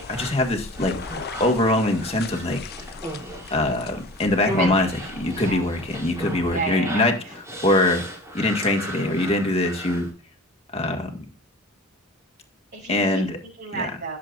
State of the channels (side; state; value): both; normal; correlation 0.39